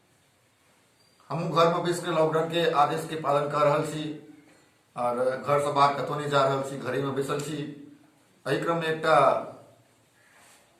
हमू घर में बैस के लॉकडाउन के आदेश के पालन कर रहल छी और घर से बाहर कतौ नहीं जा रहल छी, घरे में बैसल छी। एहि क्रम में एकटा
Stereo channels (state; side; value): identical; both; correlation 1.00